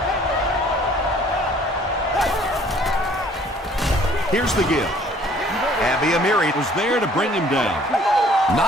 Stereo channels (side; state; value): both; normal; correlation 0.56